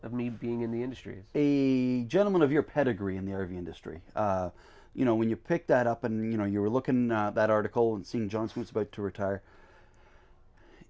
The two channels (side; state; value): both; identical; correlation 1.00